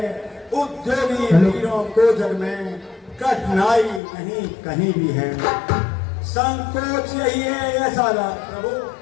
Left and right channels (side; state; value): right; drops out; at 4.0 s